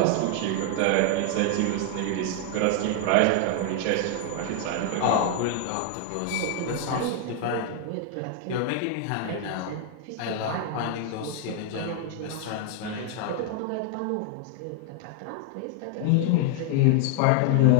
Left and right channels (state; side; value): different; both; correlation 0.00